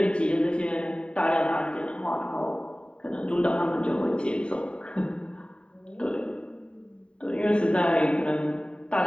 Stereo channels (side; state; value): right; late; 0.053 ms